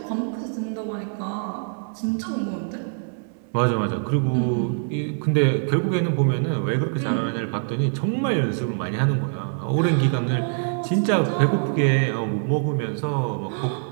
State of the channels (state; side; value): silent; left; digital silence